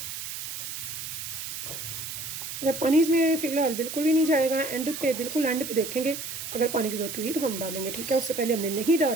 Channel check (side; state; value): right; noise; hiss, 7 dB below the sound